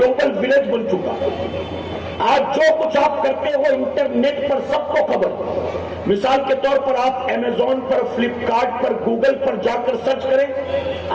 ولیج بن چکا ہے۔ آج جو کچھ آپ کرتے ہو انٹرنیٹ پر سب کو خبر۔ مثال کے طور پر آپ امیزون پر، فلپ کارٹ پر، گوگل پر جا کر سرچ کریں،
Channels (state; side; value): identical; both; correlation 1.00